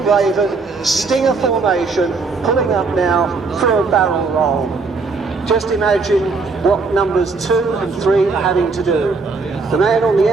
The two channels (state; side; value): quieter; left; 4.2 dB